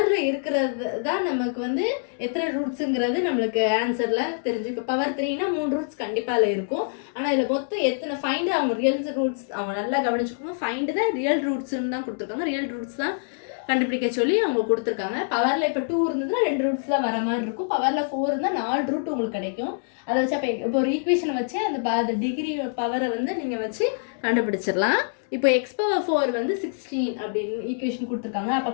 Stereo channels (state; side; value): silent; right; digital silence